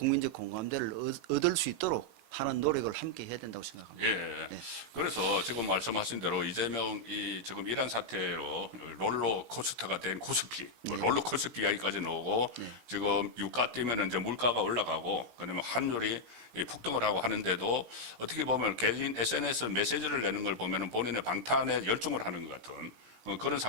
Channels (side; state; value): left; late; 17 ms